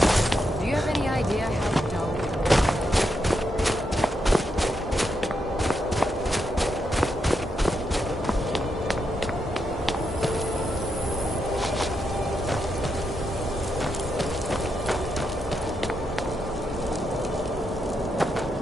Do you have any idea how dull...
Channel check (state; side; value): normal; both; correlation 0.83